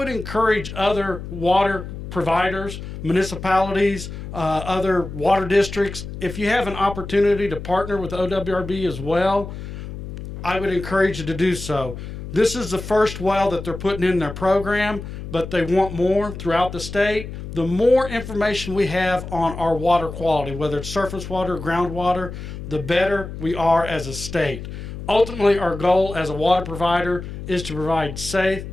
encourage other water providers, municipalities, other water districts, if you have an opportunity to partner with OWRB as well, I would encourage you to do so. This is the first well that they're putting in their program, but they want more throughout the state. The more information we have on our water quality, whether it's surface water or groundwater, the better we are as a state. Ultimately, our goal as a water provider is to provide safe,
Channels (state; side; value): noise; left; hum, 9 dB below the sound